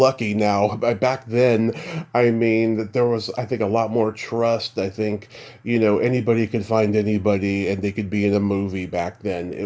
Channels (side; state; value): both; identical; correlation 1.00